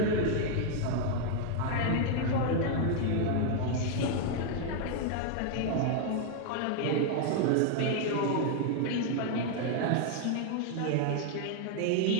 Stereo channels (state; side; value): different; both; correlation 0.00